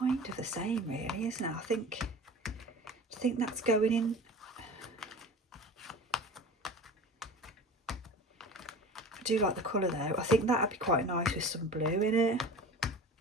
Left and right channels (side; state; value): both; normal; correlation 0.37